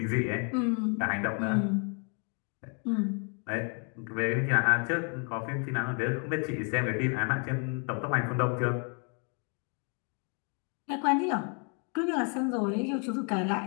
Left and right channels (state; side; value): quieter; right; 38.6 dB